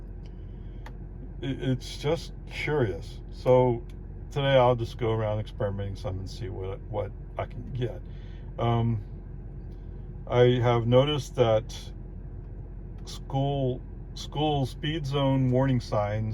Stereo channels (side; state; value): both; identical; correlation 1.00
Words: it's just curious. So today I'll just go around experimenting some and see what I can get. I have noticed that school speed zone warning